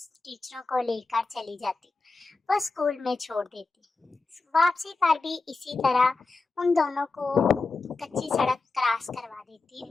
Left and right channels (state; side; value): quieter; right; 3.7 dB